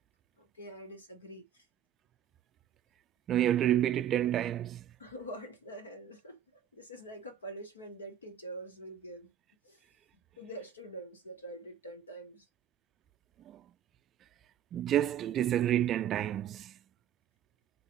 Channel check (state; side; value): quieter; left; 10.5 dB